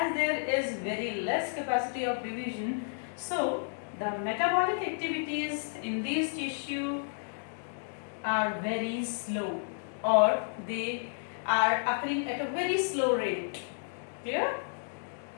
there is very less capacity of division, so the metabolic activities in these tissue are very slow, or they are occurring at a very slow rate. Here,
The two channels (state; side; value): silent; right; digital silence